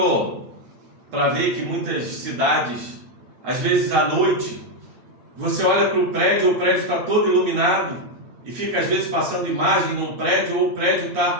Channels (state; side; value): late; left; 8.8 ms